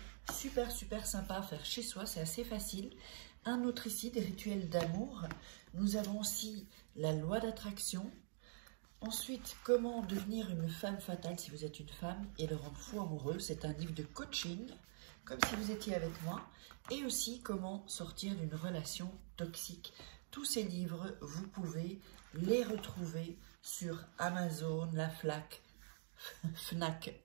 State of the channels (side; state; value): left; silent; digital silence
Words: super sympas à faire chez soi, c'est assez facile. Un autre ici, des rituels d'amour. Nous avons aussi la loi d'attraction. Ensuite, comment devenir une femme fatale si vous êtes une femme et le rendre fou amoureux. C'est un livre de coaching, comme si vous étiez avec moi. Et aussi, comment sortir d'une relation toxique. Tous ces livres, vous pouvez les retrouver sur Amazon, la Fnac